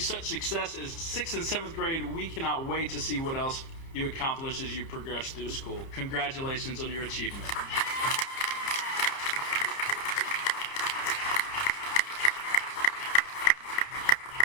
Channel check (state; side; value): late; right; 30 ms